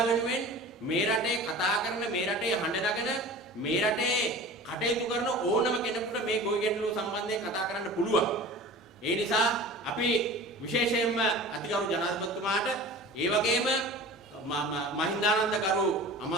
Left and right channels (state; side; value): normal; both; correlation 0.38